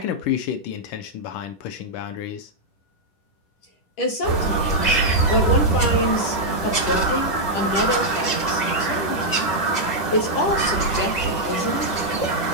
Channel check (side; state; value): right; late; 10 ms